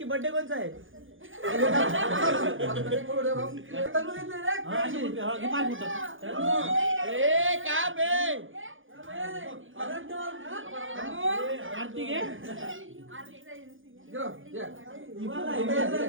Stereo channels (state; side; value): late; left; 0.58 ms